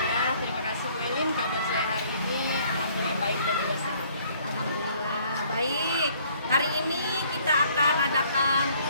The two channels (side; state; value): both; inverted; correlation -0.61